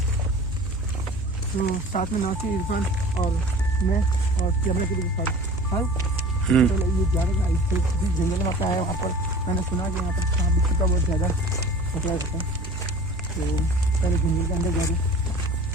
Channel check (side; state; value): both; normal; correlation 0.42